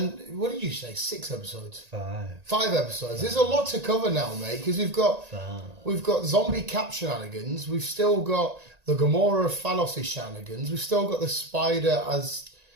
what did you say? 6 episodes? 5. 5 episodes. There's a lot to cover now, mate, because we've got zombie cap shenanigans. We've still got the Gamora Thanos shenanigans. We've still got the Spider as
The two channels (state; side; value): late; left; 1.9 ms